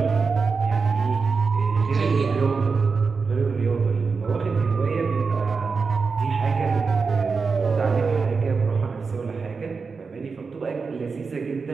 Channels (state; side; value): quieter; left; 4.9 dB